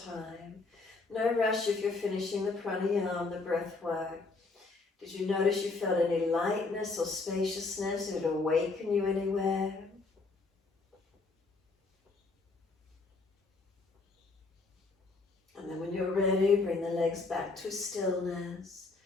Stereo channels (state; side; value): quieter; right; 3.8 dB